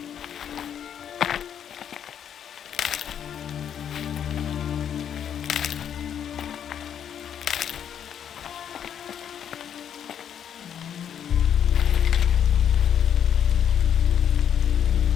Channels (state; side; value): quieter; right; 8.9 dB